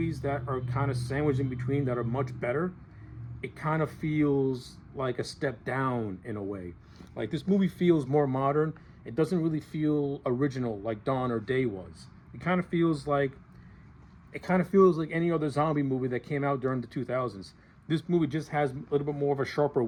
that are kind of sandwiched in between that are much better, it kind of feels like a step down in a way. This movie feels more modern. It doesn't really feel original like Dawn or Day was. It kind of feels like any other zombie movie that came out during the 2000s. This movie just has a little bit more of a sharper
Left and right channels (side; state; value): both; identical; correlation 1.00